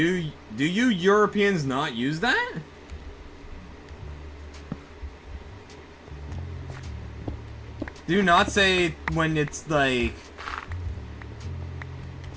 you Europeans not use that? Do you not say when it's like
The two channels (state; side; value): identical; both; correlation 1.00